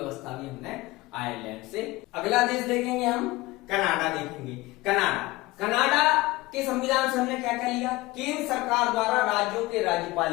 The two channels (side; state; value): right; quieter; 20.2 dB